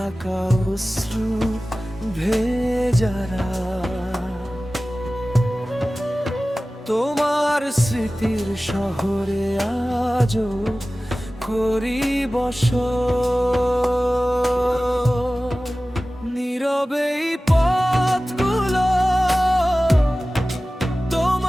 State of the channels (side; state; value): both; normal; correlation 0.97